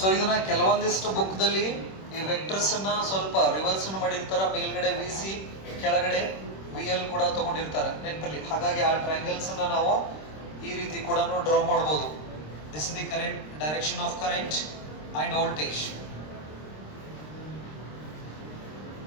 ಇದನ್ನ ಕೆಲವೊಂದಿಷ್ಟು book ದಲ್ಲಿ ಈ vectors ಅನ್ನ ಸ್ವಲ್ಪ reverse ಮಾಡಿರ್ತಾರ, ಮೇಲ್ಗಡೆ VC ಕೆಳಗಡೆ VL ಕೂಡ ತಗೊಂಡಿರ್ತಾರೆ ನೆನಪಲ್ಲಿ. ಹಾಗಾಗಿ ಆ ಟ್ರಯಾಂಗಲ್ಸ್ ಅನ್ನ ನಾವು ಈ ರೀತಿ ಕೂಡ ಡ್ರಾ ಮಾಡಬಹುದು. This is the current, direction of current and voltage.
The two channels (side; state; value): right; late; 26 ms